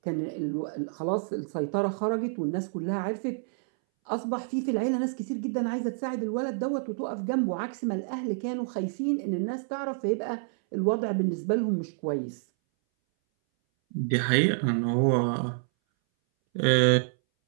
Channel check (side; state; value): left; silent; 59 dB below the other